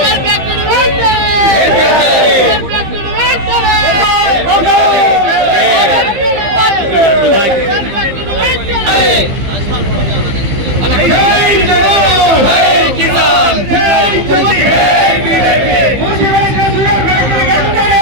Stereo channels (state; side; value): late; left; 15 ms